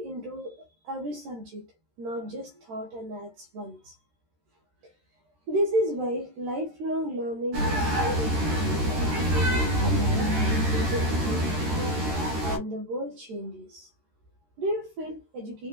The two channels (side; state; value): left; late; 13 ms